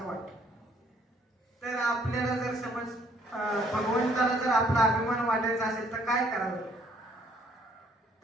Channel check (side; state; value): both; normal; correlation 0.64